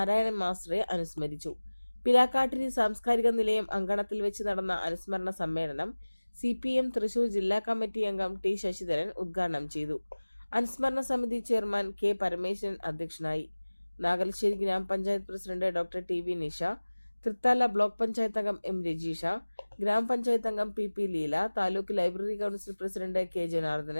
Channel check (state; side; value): inverted; both; correlation -1.00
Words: മാസ്റ്ററെ അനുസ്മരിച്ചു. പിലാക്കാട്ടിരി സാംസ്കാരിക നിലയം അങ്കണത്തിൽ വെച്ച് നടന്ന അനുസ്മരണ സമ്മേളനം CPIM തൃശൂർ ജില്ലാ കമ്മിറ്റി അംഗം T ശശിധരൻ ഉദ്ഘാടനം ചെയ്തു. അനുസ്മരണ സമിതി ചെയർമാൻ K പരമേശ്വരൻ അധ്യക്ഷനായി. നാഗലശ്ശേരി ഗ്രാമപഞ്ചായത്ത് president doctor TV Nisha, Thrithala block panchayat അംഗം M രജീഷ, ഗ്രാമപഞ്ചായത്ത് അംഗം PP Leela, taluk library council president K